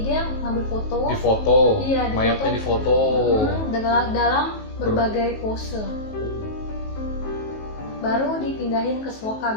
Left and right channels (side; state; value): right; late; 19 ms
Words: ngambil foto. Iya, mayatnya difoto. Dalam berbagai pose. Baru dipindahin ke